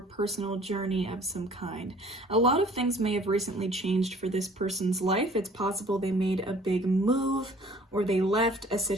journey of some kind. A lot of things may have recently changed for this person's life. It's possible they made a big move or they left a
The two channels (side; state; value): both; normal; correlation 0.53